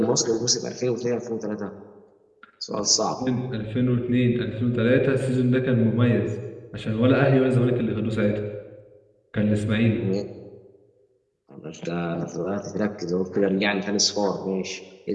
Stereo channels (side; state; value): both; identical; correlation 1.00